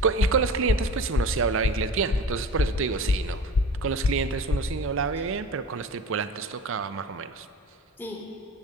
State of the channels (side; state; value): both; normal; correlation 0.35